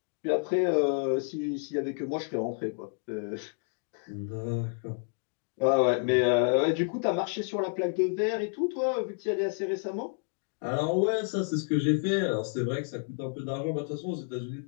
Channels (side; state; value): right; silent; 57 dB below the other